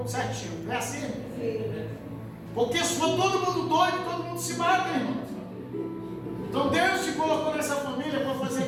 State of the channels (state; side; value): identical; both; correlation 1.00